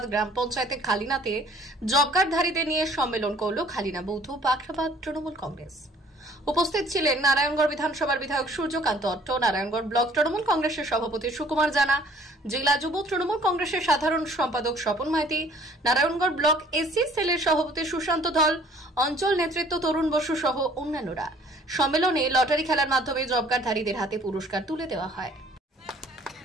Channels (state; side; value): normal; both; correlation 0.56